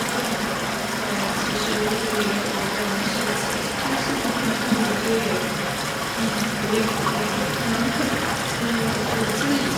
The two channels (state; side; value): identical; both; correlation 1.00